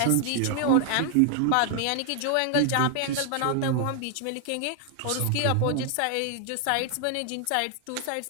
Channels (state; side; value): different; both; correlation 0.00